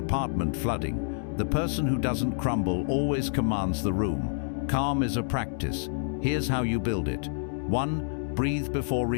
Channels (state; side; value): silent; right; digital silence